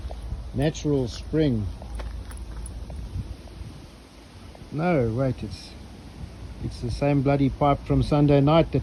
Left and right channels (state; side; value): identical; both; correlation 1.00